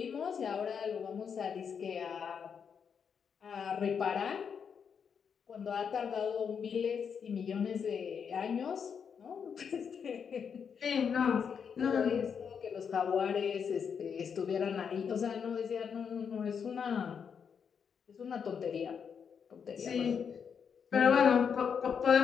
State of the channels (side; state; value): right; quieter; 6.9 dB